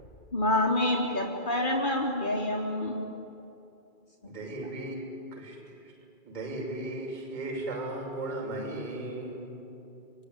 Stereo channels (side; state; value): right; late; 2.4 ms